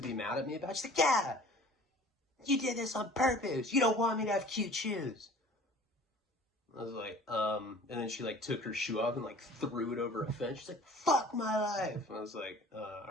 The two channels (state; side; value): normal; both; correlation 0.47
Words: be mad at me about? She's like, yeah, you did this on purpose. You don't want me to have cute shoes. I was like, and then she took her shoe off and threw it over a fence. She's like, fuck my life. And I was like, all